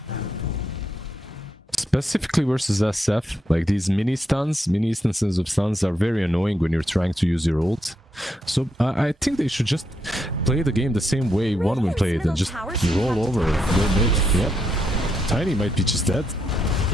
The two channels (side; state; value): both; normal; correlation 0.80